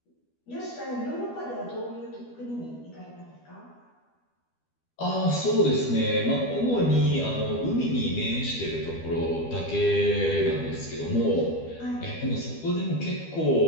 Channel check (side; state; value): right; late; 12 ms